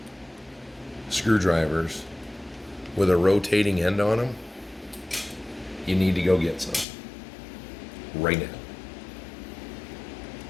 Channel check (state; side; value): drops out; right; at 6.9 s